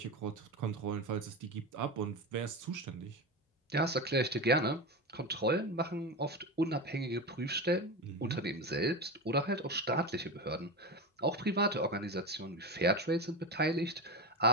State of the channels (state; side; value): normal; both; correlation 0.21